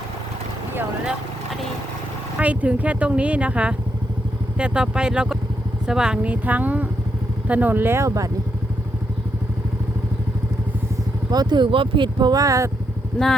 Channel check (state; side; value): normal; both; correlation 0.79